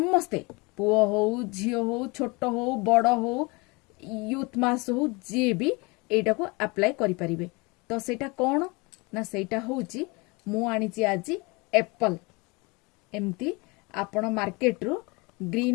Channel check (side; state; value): right; quieter; 26.8 dB